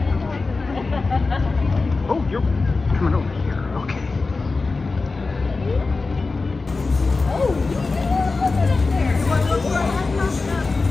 Oh, you're coming over here. Okay.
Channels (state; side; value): quieter; right; 3.9 dB